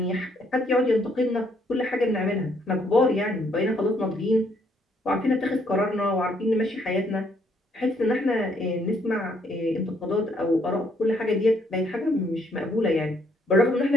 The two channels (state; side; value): normal; both; correlation 0.69